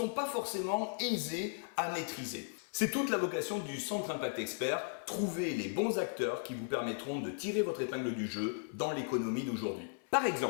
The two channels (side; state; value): right; silent; 54 dB below the other